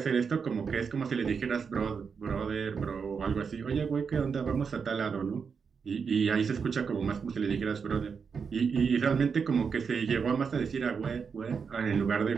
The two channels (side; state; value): left; quieter; 5.9 dB